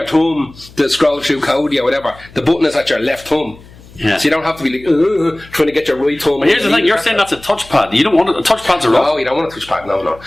thumb to scroll through code or whatever, the button is at your left thumb. Yeah. So you don't have to be like trying to get your right thumb. But here's the thing: you're saying that's a touchpad. You don't want it. Touchpads are rough. No, you don't want a touchpad. No.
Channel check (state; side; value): noise; left; hum, 22 dB below the sound